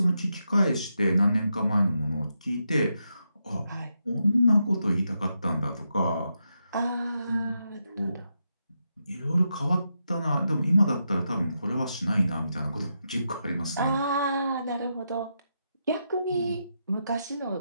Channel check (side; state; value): both; inverted; correlation -0.84